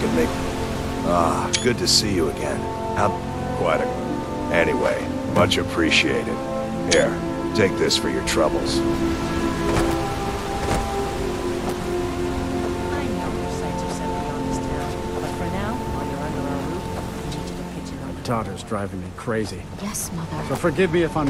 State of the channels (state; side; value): identical; both; correlation 1.00